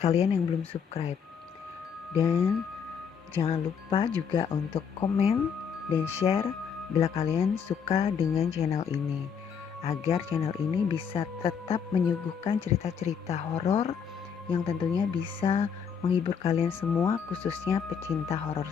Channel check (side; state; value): right; quieter; 7.0 dB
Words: yang belum subscribe. Dan jangan lupa juga untuk komen dan share bila kalian suka dengan channel ini, agar channel ini bisa tetap menyuguhkan cerita-cerita horor yang tentunya bisa menghibur kalian semua, khususnya pecinta horror